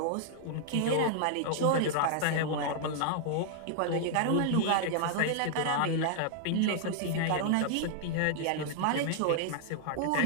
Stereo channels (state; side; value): different; both; correlation -0.01